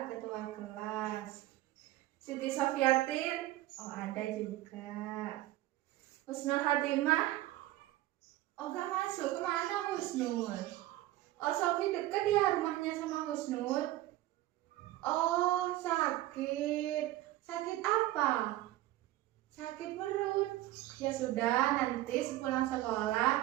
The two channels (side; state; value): left; quieter; 16.0 dB